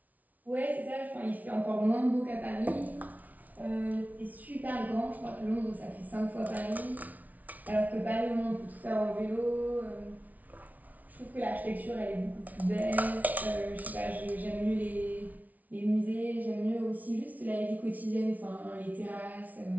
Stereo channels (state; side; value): late; left; 0.074 ms